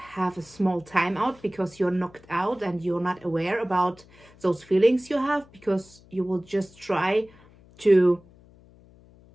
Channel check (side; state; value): left; noise; hum, 26 dB below the sound